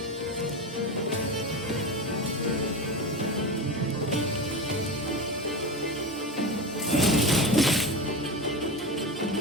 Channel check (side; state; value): both; normal; correlation 0.24